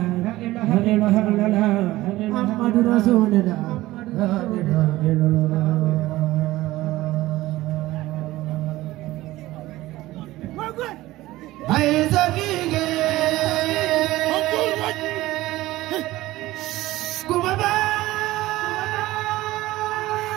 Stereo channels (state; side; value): quieter; left; 17.3 dB